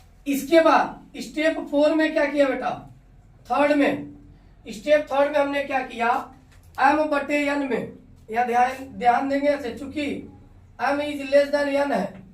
इसके बाद स्टेप 4 में क्या किया बेटा? स्टेप थर्ड में हमने क्या किया, m/n में या ध्यान देंगे ऐसे, चूंकि m is less than n है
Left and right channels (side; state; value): both; identical; correlation 1.00